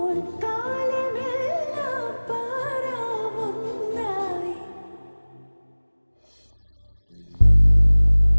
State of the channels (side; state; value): both; inverted; correlation -1.00